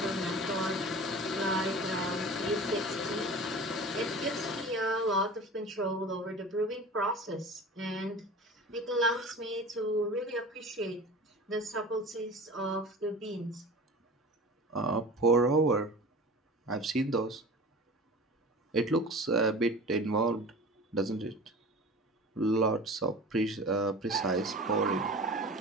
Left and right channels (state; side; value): normal; both; correlation 0.37